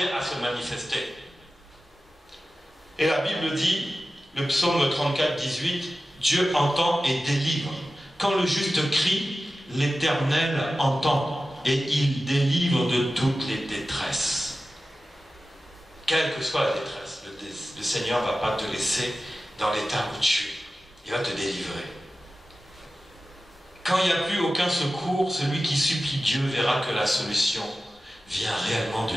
à se manifester. Et la Bible dit, le psaume 34, 18, Dieu entend et délivre. Quand le juste crie, l'Éternel entend et il délivre de toutes les détresses. Quelle que soit la détresse, le Seigneur ne va pas te laisser dans l'état où tu es. Il va te délivrer. Quand il n'y a plus aucun secours, celui qui supplie Dieu verra que la solution vient réellement de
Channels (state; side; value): normal; both; correlation 0.94